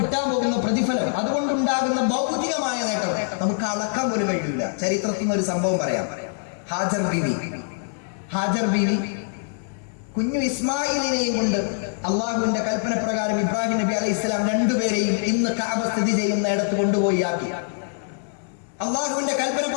പോകുന്ന പ്രതിഫലം, അതുകൊണ്ടുണ്ടാകുന്ന ഭൗതികമായ നേട്ടം നമുക്ക് അളക്കാൻ പോലും കഴിയില്ല. ചരിത്രത്തിൽ നിന്ന് ഒരു സംഭവം പറയാം. ഹാജർ ബീവി കുഞ്ഞു ഇസ്മായിലിനെയും കൊണ്ട് അള്ളാഹുവിന്റെ കൽപ്പന പ്രകാരം ഇബ്രാഹിം നബി അലൈഹി ഇസ്ലാം രണ്ടുപേരെയും ഇന്ന് കഅബ സ്ഥിതി ചെയ്യുന്ന ഇടത്ത് കൊണ്ടുപോയി ആക്കി. അള്ളാഹുവിന്റെ കൽപ്പന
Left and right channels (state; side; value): silent; right; 63 dB below the other